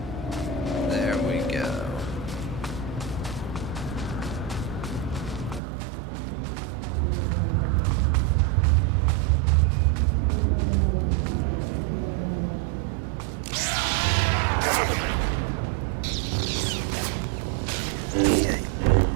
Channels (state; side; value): drops out; left; at 5.6 s